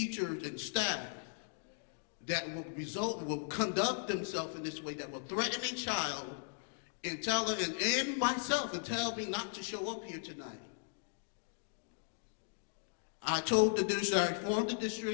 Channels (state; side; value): silent; right; digital silence